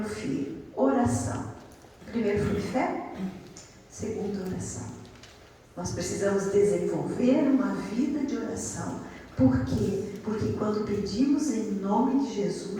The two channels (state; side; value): identical; both; correlation 1.00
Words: Filho. Oração. Primeiro foi fé, segundo oração. Nós precisamos desenvolver uma vida de oração. Por quê? Porque quando pedimos em nome de